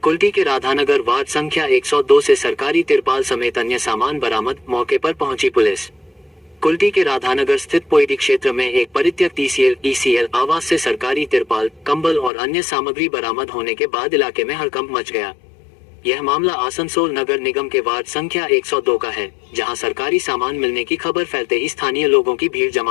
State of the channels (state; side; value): drops out; right; at 12.3 s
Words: कुल्टी के राधानगर वार्ड संख्या 102 से सरकारी तिरपाल समेत अन्य सामान बरामद, मौके पर पहुंची पुलिस। कुल्टी के राधानगर स्थित पोइडी क्षेत्र में एक परित्यक्त ईसीएल आवास से सरकारी तिरपाल, कंबल और अन्य सामग्री बरामद होने के बाद इलाके में हड़कंप मच गया। यह मामला आसनसोल नगर निगम के वार्ड संख्या 102 का है, जहां सरकारी सामान मिलने की खबर फैलते ही स्थानीय लोगों की भीड़